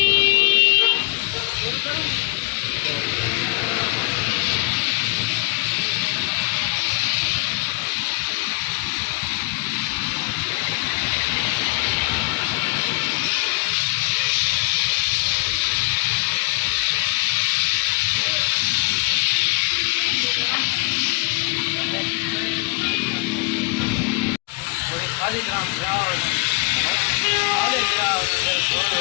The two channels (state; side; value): quieter; right; 30.6 dB